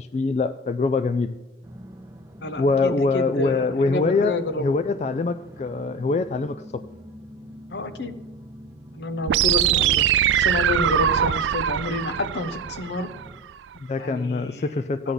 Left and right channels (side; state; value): both; normal; correlation 0.31